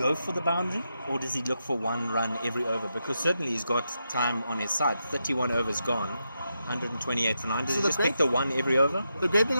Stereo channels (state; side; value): inverted; both; correlation -0.85